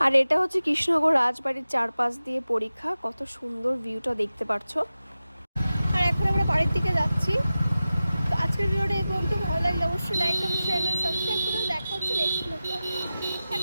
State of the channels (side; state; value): both; inverted; correlation -0.95